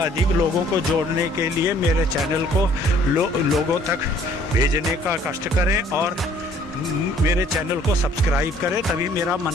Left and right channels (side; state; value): both; normal; correlation 0.58